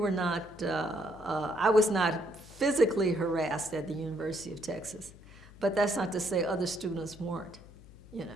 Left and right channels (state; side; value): noise; left; hum, 21 dB below the sound